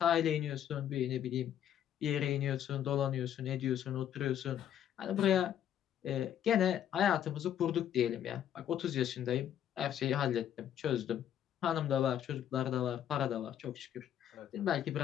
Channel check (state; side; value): quieter; right; 10.3 dB